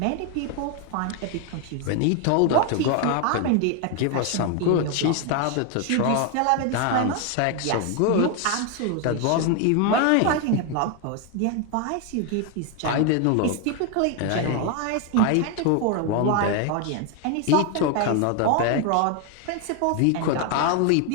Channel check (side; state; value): both; different; correlation 0.01